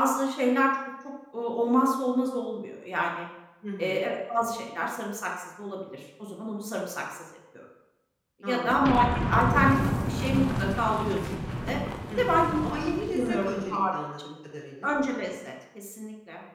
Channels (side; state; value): both; identical; correlation 1.00